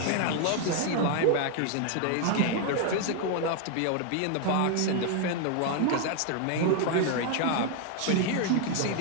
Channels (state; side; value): different; both; correlation 0.00